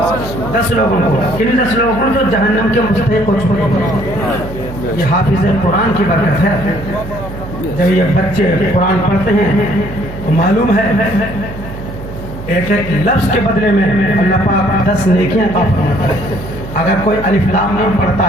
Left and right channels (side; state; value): right; noise; hum, 11 dB below the sound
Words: 10 لوگوں کو، کن 10 لوگوں کو؟ جو جہنم کے مستحق ہو چکے ہیں۔ یہ حافظ قرآن کی برکت ہے۔ جب یہ بچے قرآن پڑھتے ہیں تو معلوم ہے ایک ایک لفظ کے بدلے میں اللہ پاک 10 نیکیاں عطا فرماتا ہے۔ اگر کوئی الف لام میم پڑھتا